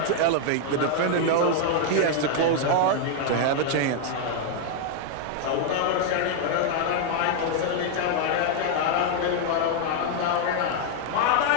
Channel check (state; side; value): different; both; correlation 0.00